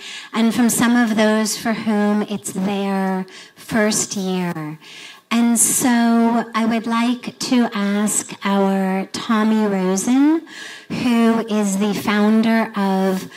and from some of those for whom it's their first year. And so I would like to ask our Tommy Rosen, who is the founder of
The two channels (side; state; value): both; identical; correlation 1.00